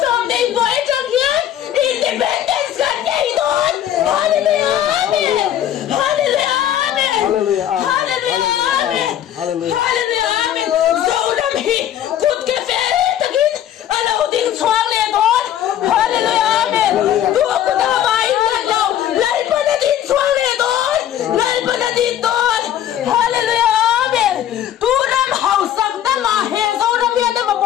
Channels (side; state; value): right; quieter; 11.1 dB